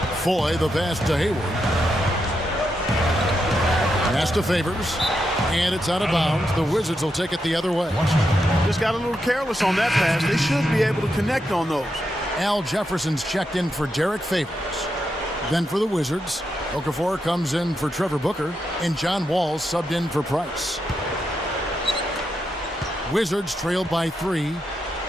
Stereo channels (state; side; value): normal; both; correlation 0.84